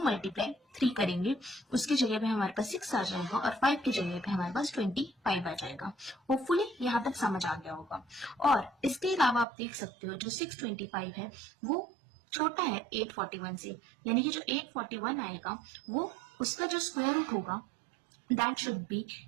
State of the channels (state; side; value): drops out; left; at 9.5 s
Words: मल्टीप्लाई 3 करेंगे उसकी जगह पे हमारे पास 6 आ जाएगा और 5 की जगह पे हमारे पास 25 आ जाएगा। होपफुली यहाँ तक समझ आ गया होगा। और इसके अलावा आप देख सकते हो जो 625 है वो छोटा है 841 से, यानी कि जो 841 आएगा वो उसका जो स्क्वायर रूट होगा that should be